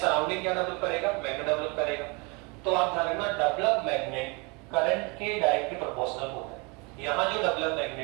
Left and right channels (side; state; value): left; quieter; 29.7 dB